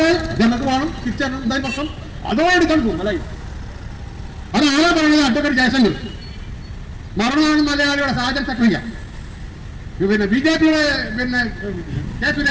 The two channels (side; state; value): both; identical; correlation 1.00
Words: ജനങ്ങൾക്ക് വേണം, തിരിച്ചാൽ എന്തായി പ്രശ്നം? അതോ എടുക്കാൻ പോകും അല്ലായി. അതാരാ പറയുന്നത്? അഡ്വക്കേറ്റ് ജയശങ്കർ മരണമാണ് മലയാളിയുടെ സാജൻ സക്രിയ, പിന്നെ ബിജെപിയുടെ പിന്നെ കെ